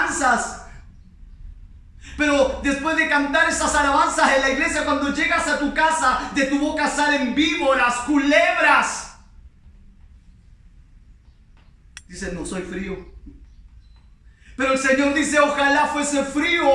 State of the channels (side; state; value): both; identical; correlation 1.00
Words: Pero después de cantar esas alabanzas en la iglesia, cuando llegas a tu casa, de tu boca salen víboras, culebras. Dices, no soy frío. Pero el Señor dice, ojalá fuese frío